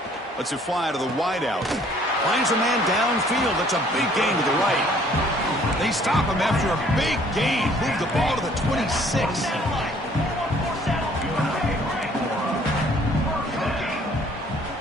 Lets it fly to the wideout. Finds a man downfield. That's a big gain to the right. They stop him after a big gain. Move the ball to the 26.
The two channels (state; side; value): normal; both; correlation 0.59